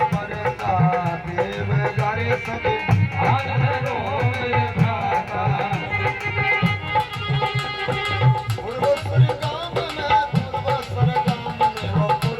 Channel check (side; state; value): both; identical; correlation 1.00